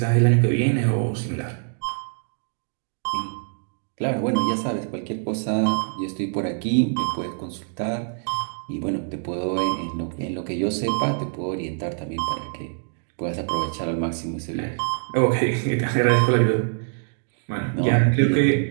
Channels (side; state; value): left; silent; 62 dB below the other